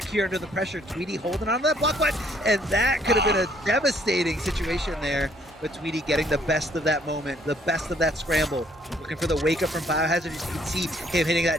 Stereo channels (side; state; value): both; normal; correlation 0.64